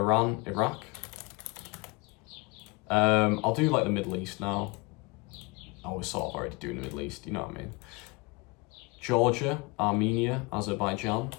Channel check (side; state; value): right; quieter; 26.3 dB